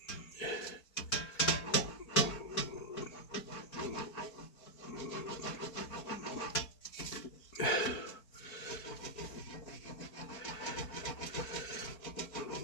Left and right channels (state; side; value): late; right; 4.5 ms